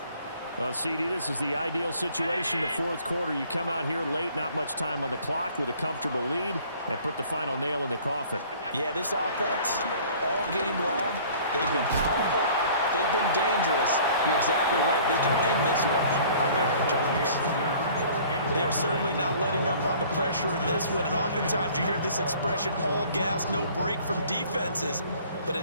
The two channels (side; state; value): both; inverted; correlation -0.52